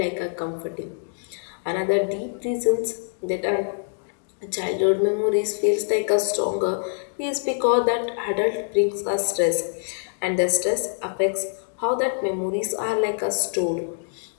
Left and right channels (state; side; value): silent; right; digital silence